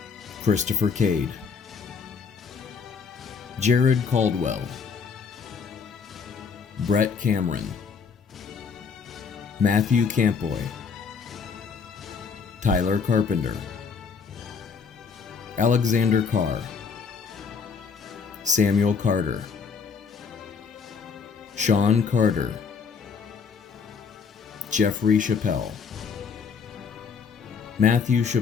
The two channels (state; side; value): quieter; right; 5.7 dB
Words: Christopher Cade, Jared Caldwell, Brett Cameron, Matthew Campoy, Tyler Carpenter, Alexander Carr, Samuel Carter, Sean Carter, Jeffrey Chappelle, Matthew